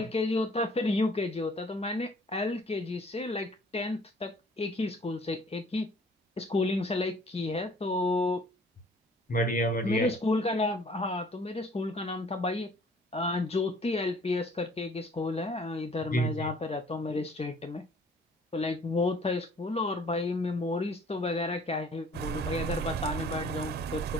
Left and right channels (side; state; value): both; normal; correlation 0.55